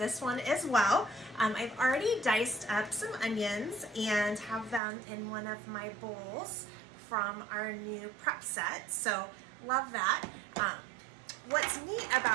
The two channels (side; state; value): left; drops out; at 4.8 s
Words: one as well. I've already diced up some onions and have them in one of my bowls from our new prep set, so love that. What's neat